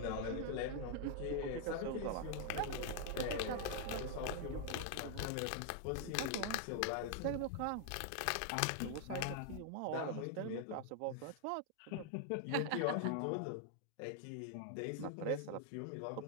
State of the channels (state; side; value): different; both; correlation 0.00